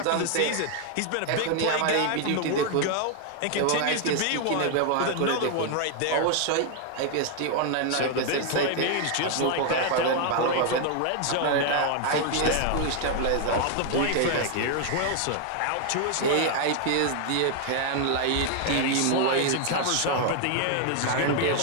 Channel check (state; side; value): different; both; correlation 0.00